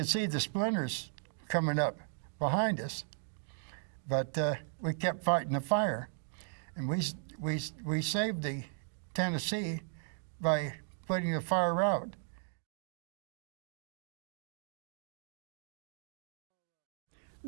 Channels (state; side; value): silent; left; 53 dB below the other